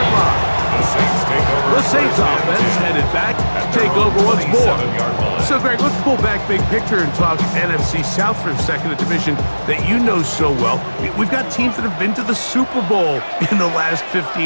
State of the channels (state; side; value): inverted; both; correlation -1.00